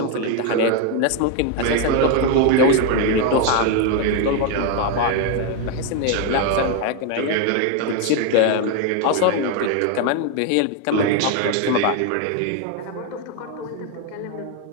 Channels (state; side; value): different; both; correlation 0.01